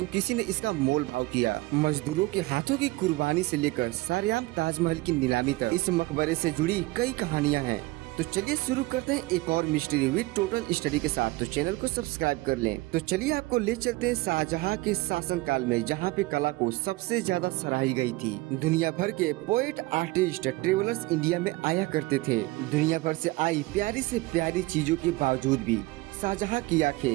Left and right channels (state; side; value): quieter; left; 20.9 dB